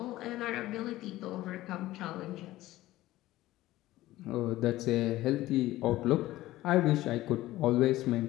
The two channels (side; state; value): right; quieter; 16.3 dB